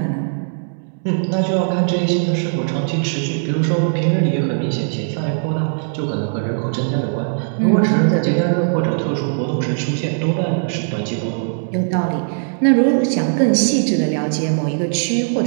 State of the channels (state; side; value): silent; left; digital silence